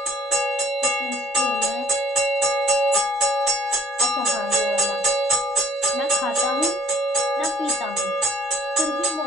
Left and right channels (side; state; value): both; normal; correlation 0.61